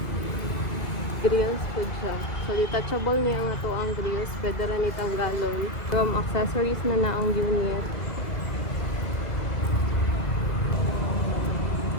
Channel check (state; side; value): late; right; 2.2 ms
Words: Grills po siya. So detachable niya nga to ang grills. Pwede rin itang galon. From accessories na ang unit.